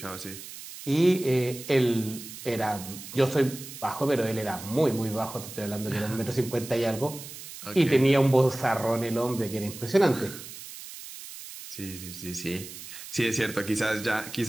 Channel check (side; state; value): right; noise; hiss, 13 dB below the sound